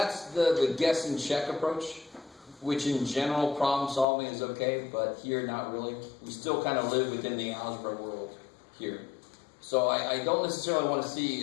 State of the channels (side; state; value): right; drops out; at 4.0 s